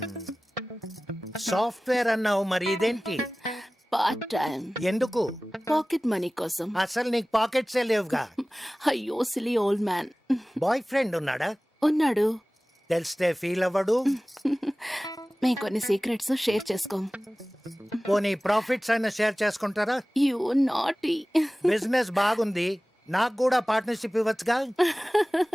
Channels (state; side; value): normal; both; correlation 0.98